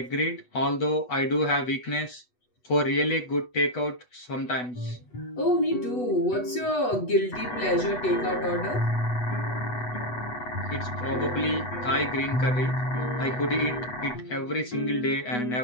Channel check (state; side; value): late; right; 8.1 ms